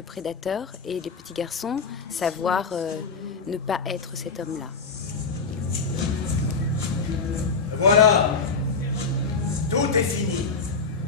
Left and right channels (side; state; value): right; quieter; 4.7 dB